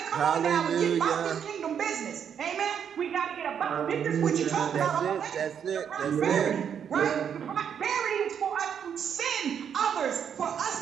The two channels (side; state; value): left; quieter; 8.1 dB